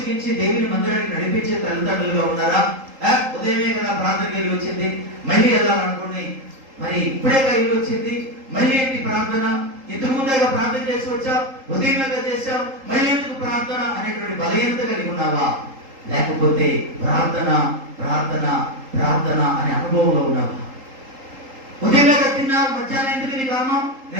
దేవుని మందిరానికి నడిపించే తల్లిదండ్రులుగా ఉన్నారా? ఉదయమే కదా ప్రార్థనకి వెళ్ళి వచ్చింది, మళ్ళీ వెళ్ళాలనుకుని మరి ఇప్పుడేగా వెళ్ళి వచ్చింది, మళ్ళీ ఏంటి ప్రార్థన? ఇంతకు ముందేగా ప్రార్థన చేసి వచ్చావు, ఉదయంగా చేశావు, మళ్ళీ ఎందుకు ప్రార్థన అనేటువంటి బలహీనత కలిగి ఉన్నావా? లేకపోతే ప్రార్థన ప్రార్థన ప్రార్థన అనే అనుభవంలో ఉన్నావా? ఉదయంగా తిన్నావు, మధ్యాహ్నం ఎందుకు నీ కారణం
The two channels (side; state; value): left; late; 3.8 ms